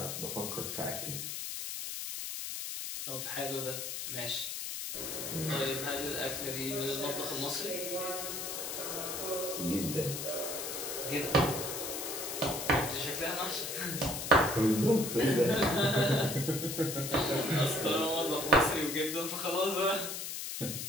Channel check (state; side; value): noise; left; hiss, 5 dB below the sound